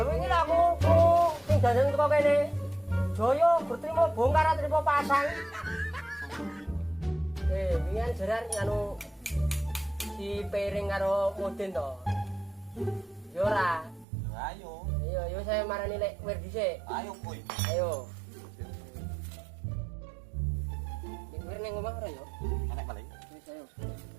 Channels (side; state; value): left; drops out; at 14.1 s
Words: wingi aku sing dandan teko kene. Joyo berterima bongkar trimo pasang. Wingi jerar anu si piring karo Mudin to. Yo ora. Ayo. Iya, yo saya marani lek Wir dhisik. Ayo kowe. Ayo. Nek Wir ning omah ora yo? Enek paling. Wis ayo.